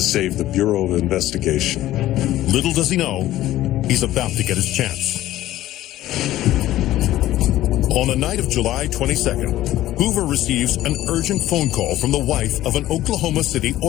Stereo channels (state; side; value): quieter; right; 14.6 dB